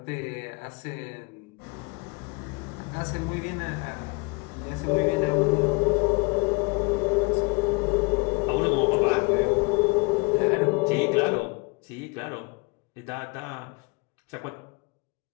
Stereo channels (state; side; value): quieter; right; 28.9 dB